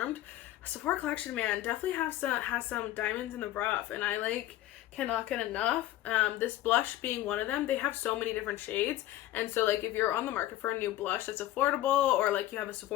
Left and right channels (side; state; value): right; quieter; 14.5 dB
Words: Sephora collection, man, definitely has some diamonds in the rough, and I like cannot get enough. This blush being one of them. They have so many different shades, and so like if you're on the market for a new blush that's affordable, or like you have a